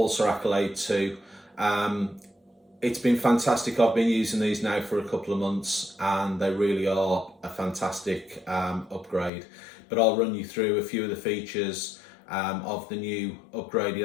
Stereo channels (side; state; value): right; drops out; at 9.3 s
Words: Accolade 2. It's been fantastic. I've been using these now for a couple of months and they really are a fantastic upgrade. But I'll run you through a few of the features of the new upgraded